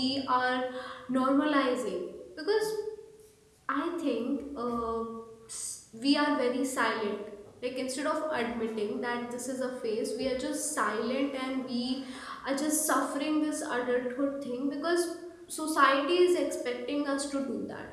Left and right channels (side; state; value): both; identical; correlation 1.00